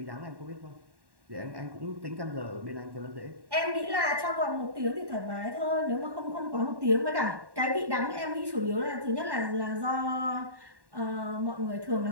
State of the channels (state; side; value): late; left; 1.1 ms